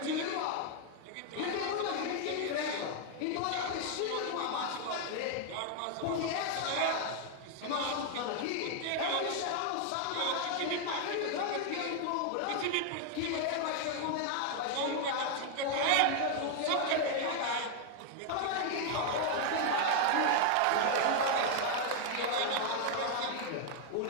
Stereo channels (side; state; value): both; different; correlation 0.00